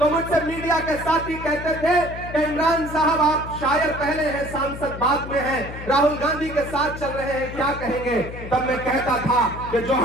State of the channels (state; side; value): noise; left; hum, 10 dB below the sound